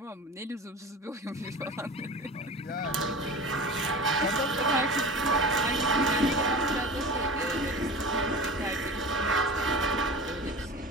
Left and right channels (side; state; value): both; normal; correlation 0.34